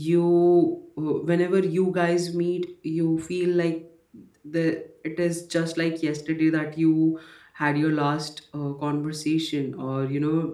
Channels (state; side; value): identical; both; correlation 1.00